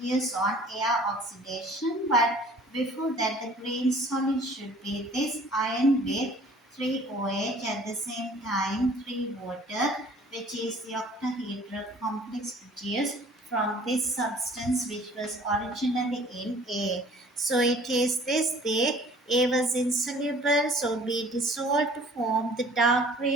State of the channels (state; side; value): normal; both; correlation 0.52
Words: on air oxidation, but before that the green solid should be this iron with 3 OH at the same time 3 water, which is the octahedral complex produced from this substance which was originally in A. So it is this the A was insoluble, so B dissolved to form the dark